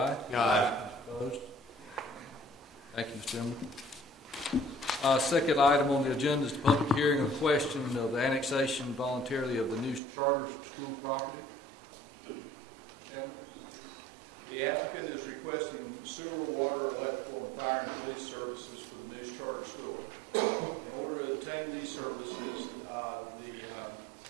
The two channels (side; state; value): left; drops out; at 10.0 s